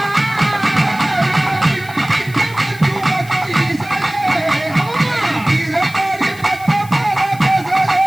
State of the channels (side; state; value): left; noise; hiss, 20 dB below the sound